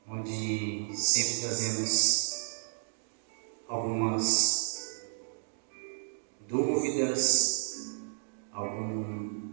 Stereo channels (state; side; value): silent; left; digital silence